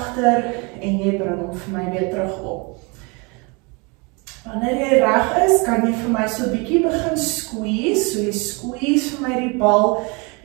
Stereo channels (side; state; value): left; quieter; 29.8 dB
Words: en jy bring hom vir my weer terug op. Wanneer jy reg is, kan jy vir my so 'n bietjie begin squeeze. So jy squeeze vir my die bal,